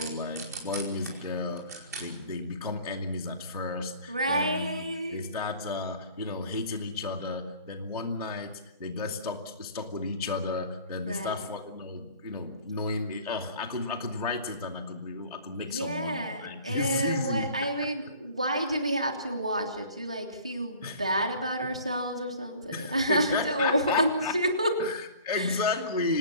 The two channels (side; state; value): both; inverted; correlation -0.47